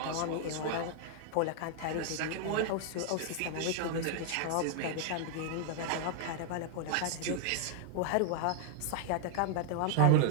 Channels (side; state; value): both; different; correlation 0.00